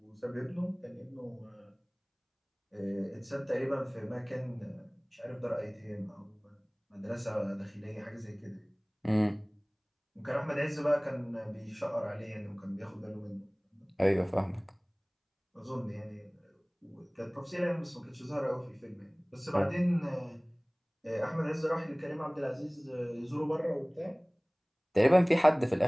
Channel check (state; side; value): identical; both; correlation 1.00